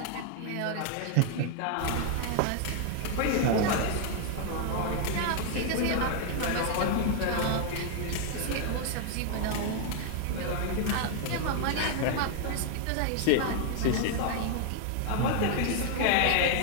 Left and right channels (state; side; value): different; both; correlation 0.00